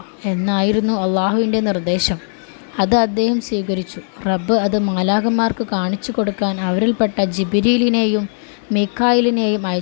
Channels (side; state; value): right; silent; digital silence